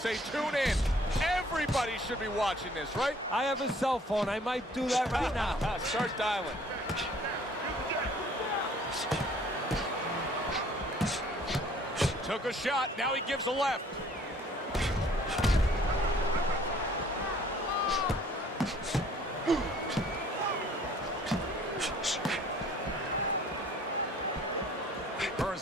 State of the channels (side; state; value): both; normal; correlation 0.56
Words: tune in. Everybody should be watching this, right? I have a cell phone. I might do that right now. Start dialing. Took a shot. Now he gives a left. Hearns